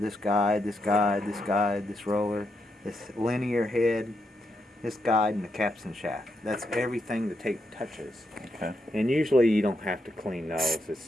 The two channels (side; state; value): both; normal; correlation 0.82